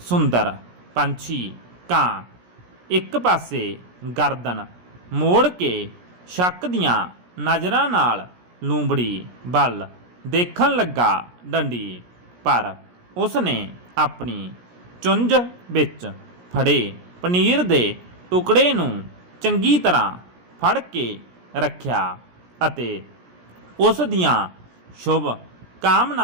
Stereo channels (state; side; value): late; left; 17 ms